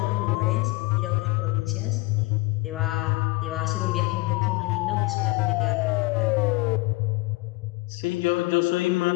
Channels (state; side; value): quieter; right; 22.5 dB